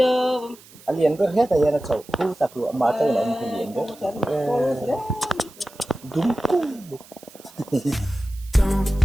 Lian có hết rồi là chậu khu tập lụa mà chơi lại một lian đó. Đúng. Don't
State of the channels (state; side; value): noise; right; hiss, 23 dB below the sound